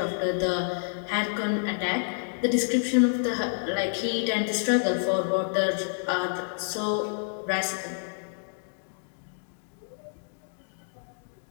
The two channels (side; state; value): right; silent; digital silence